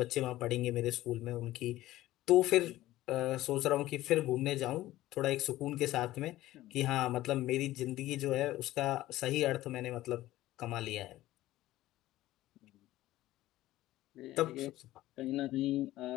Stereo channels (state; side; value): quieter; right; 15.8 dB